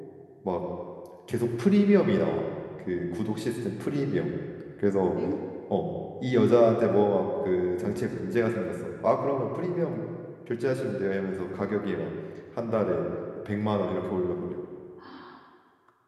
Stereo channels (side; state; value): both; identical; correlation 1.00